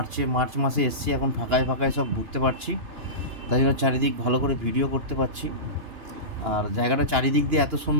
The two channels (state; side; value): late; left; 2.9 ms